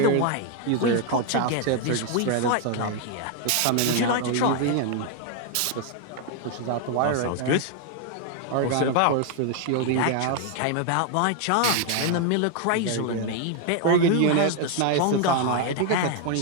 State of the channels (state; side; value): different; both; correlation 0.00